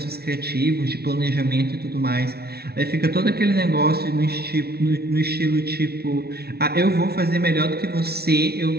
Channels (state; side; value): late; left; 0.46 ms